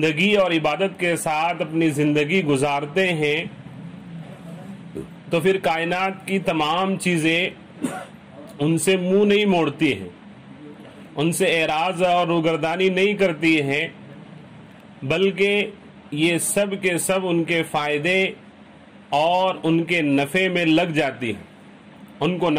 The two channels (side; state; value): both; identical; correlation 1.00